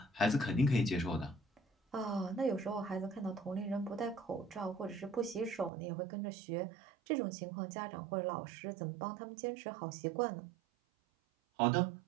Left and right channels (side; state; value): left; drops out; at 5.7 s